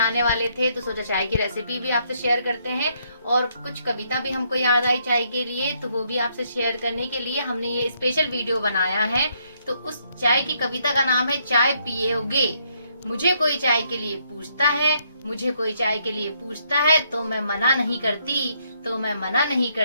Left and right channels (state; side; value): inverted; both; correlation -0.72